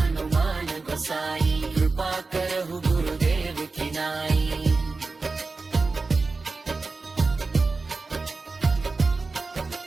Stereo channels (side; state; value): left; quieter; 3.9 dB